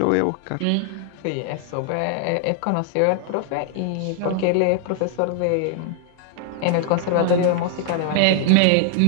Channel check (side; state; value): both; different; correlation 0.00